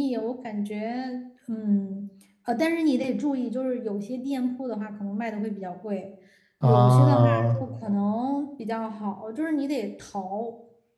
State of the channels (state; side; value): identical; both; correlation 1.00